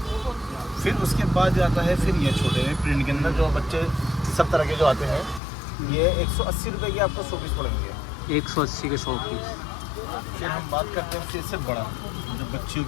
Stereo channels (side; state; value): right; drops out; at 5.4 s